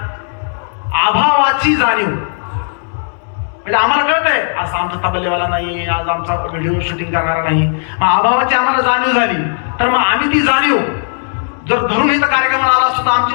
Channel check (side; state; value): right; silent; digital silence